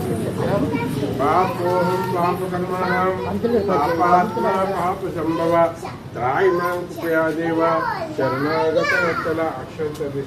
పాపోహం పాపకర్మాణం పాపాత్మ పాప సంభవ త్రాయిమాం కృపయా దేవ శరణాగత వత్సల అక్షంత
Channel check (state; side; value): identical; both; correlation 1.00